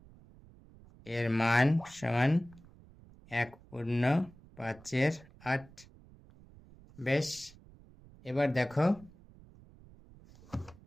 এর মান সমান 1 পূর্ণ 5/8। বেশ, এবার দেখো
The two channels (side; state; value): right; noise; rumble, 23 dB below the sound